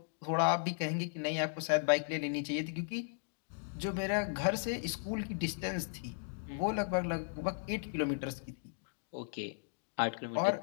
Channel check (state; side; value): silent; right; digital silence